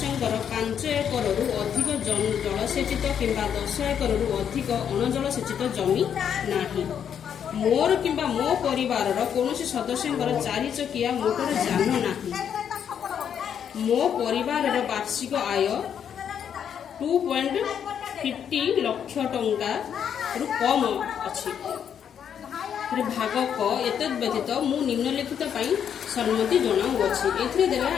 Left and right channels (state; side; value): quieter; right; 8.4 dB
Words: 5 ଏକରରୁ ଅଧିକ ଜଳସେଚିତ କିମ୍ବା 10 ଏକରରୁ ଅଧିକ ଅଣଜଳସେଚିତ ଜମି ନାହିଁ। ମୋର କିମ୍ବା ମୋ ପରିବାରର କୌଣସି ସଦସ୍ୟଙ୍କର 4 ଚକିଆ ମୋଟର ଯାନ ନାହିଁ। ମୋ ପରିବାରର ବାର୍ଷିକ ଆୟ 2.50 ଲକ୍ଷ ଟଙ୍କାରୁ କମ୍ ଅଛି। ଭାଗ କ ଏତଦ୍ ବ୍ୟତୀତ ମୁଁ ନିମ୍ନଲିଖିତ ପାଇଁ ସମ୍ମତି ଜଣାଉଅଛି। ଏଥିରେ ଦେଲେ